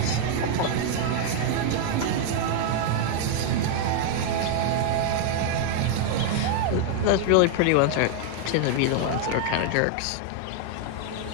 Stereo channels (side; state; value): both; different; correlation 0.00